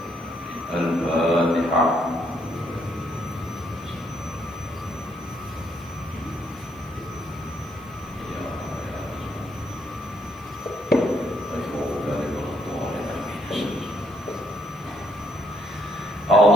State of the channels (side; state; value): left; noise; hiss, 29 dB below the sound